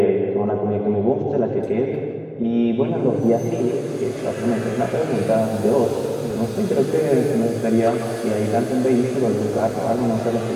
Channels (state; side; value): identical; both; correlation 1.00